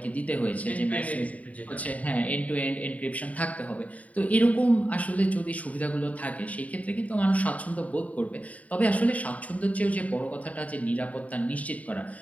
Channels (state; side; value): late; right; 0.069 ms